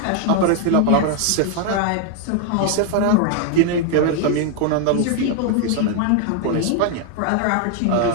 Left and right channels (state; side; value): different; both; correlation 0.00